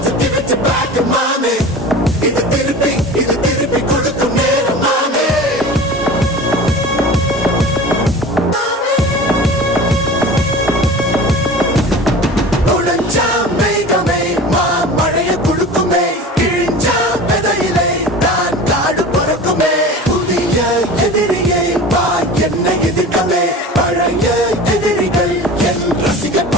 to give it to back, mommy. இது திருப்பி கொடுக்கும் நேரம், mommy. உடைஞ்சா மேகமே மழைய குடுக்குமே, கிழிஞ்சா விதையிலே தான் காடு பொறுக்குமே. புதிய எதிரியை வா என்னை எதிர்க்கவே, பழைய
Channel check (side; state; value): both; normal; correlation 0.36